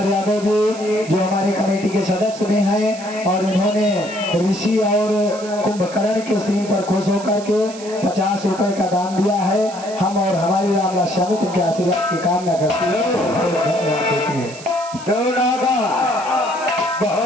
यादव जी जो हमारे कमेटी के सदस्य भी हैं, और उन्होंने ऋषि और कुंभकर्ण के सीन पर खुश होकर के 50 रुपए का दान दिया है। हम और हमारी रामदास समिति के आशीर्वाद की कामना करती है, धन्यवाद देती है।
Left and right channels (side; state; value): right; noise; hiss, 16 dB below the sound